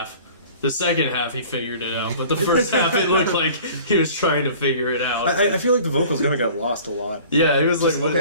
The second half, he figured it out, but the first half, it looked like he was trying to figure it out. I feel like the vocals kind of got lost a lot. Yeah, it was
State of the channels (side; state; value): both; inverted; correlation -0.46